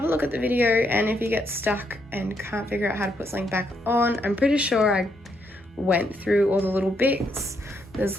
a look at the video, and if you get stuck and can't figure out how to put something back on, I'm pretty sure I went through all the little bits. There's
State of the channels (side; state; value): both; normal; correlation 0.77